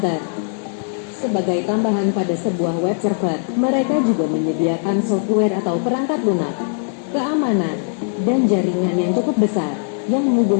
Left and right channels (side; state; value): right; silent; digital silence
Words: Sebagai tambahan pada sebuah web server, mereka juga menyediakan software atau perangkat lunak, keamanan, dan jaringan yang cukup besar, yang